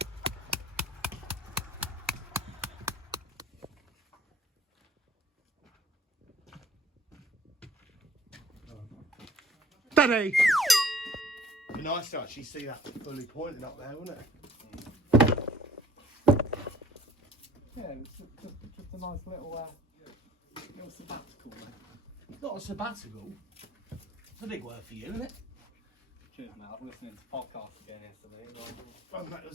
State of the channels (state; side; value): normal; both; correlation 0.55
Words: Daddy! Be nice to actually see that fully pointing up there, wouldn't it? Yeah, it's just a nice little sabbatical, mate. Not a sabbatical. It's a big word for you, isn't it? Cheers, mate. I was listening to podcasts again yesterday. Oh, that